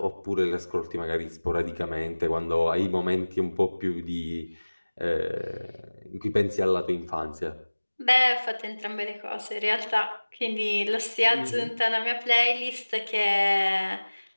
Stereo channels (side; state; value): both; inverted; correlation -1.00